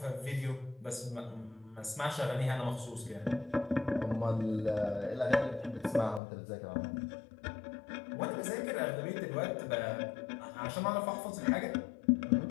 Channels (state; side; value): drops out; right; at 6.2 s